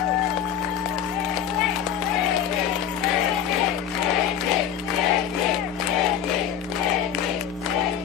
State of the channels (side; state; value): right; quieter; 9.1 dB